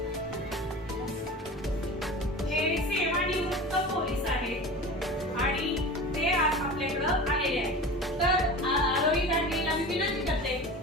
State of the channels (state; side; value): normal; both; correlation 0.34